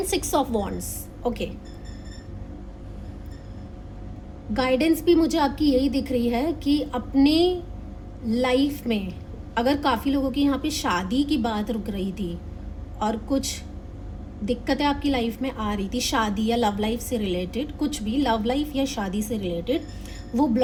6 of wands. Okay, guidance भी मुझे आपकी यही दिख रही है कि अपने लाइफ में अगर काफ़ी लोगों की यहाँ पे शादी की बात रुक रही थी और कुछ दिक्कतें आपकी लाइफ में आ रही थी, शादी या लव लाइफ से रिलेटेड, कुछ भी लव लाइफ या शादी से रिलेटेड, वो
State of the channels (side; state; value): both; identical; correlation 1.00